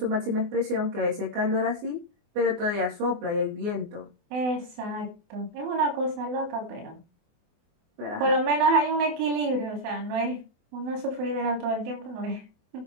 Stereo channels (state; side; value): late; left; 24 ms